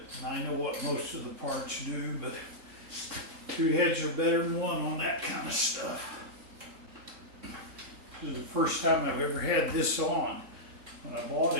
and I know what most of the parts do, but two heads are better than one on that kind of stuff. This is the first time I've ever had this on. When I bought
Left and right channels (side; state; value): left; late; 3.7 ms